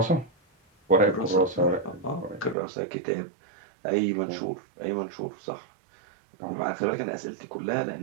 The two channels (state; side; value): drops out; left; at 2.6 s